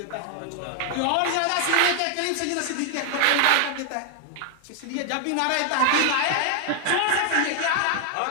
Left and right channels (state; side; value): different; both; correlation 0.00